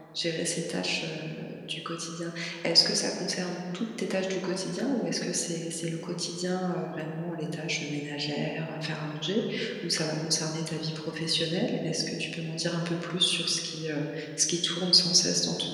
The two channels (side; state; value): both; identical; correlation 1.00